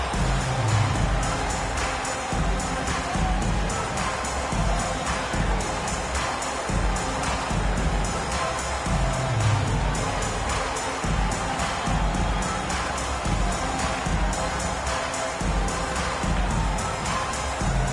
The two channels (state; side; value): identical; both; correlation 1.00